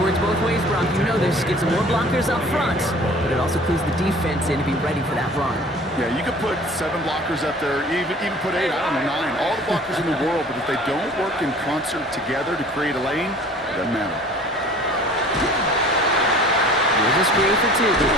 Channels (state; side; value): normal; both; correlation 0.48